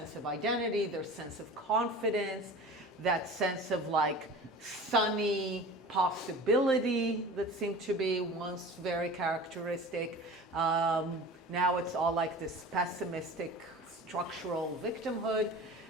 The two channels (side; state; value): both; normal; correlation 0.38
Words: of identity, their sense of confidence, that sense of sunny possibility that seemed to be once very characteristic. Now it's all like this pessimistic structural victimhood.